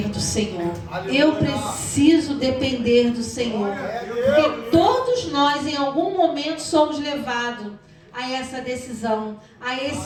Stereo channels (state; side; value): identical; both; correlation 1.00